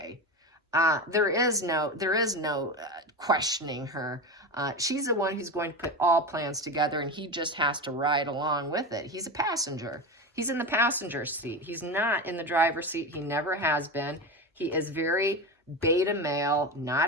There is no questioning her. She's the one who's going to put all plans together, and he just has to ride along with it. He's a passenger. He's in the passenger seat. He's not in the driver's seat. He never has been. He is very beta male,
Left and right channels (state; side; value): normal; both; correlation 0.22